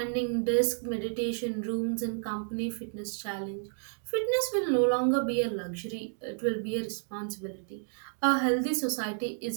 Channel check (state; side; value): silent; left; digital silence